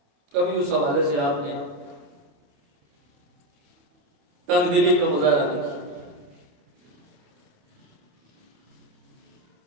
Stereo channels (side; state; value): left; late; 28 ms